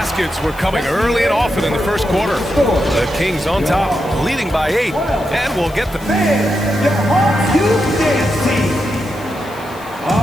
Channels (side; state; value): left; noise; hiss, 22 dB below the sound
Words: were coming early and often in the first quarter. The Kings on top, leading by 8, and will get the...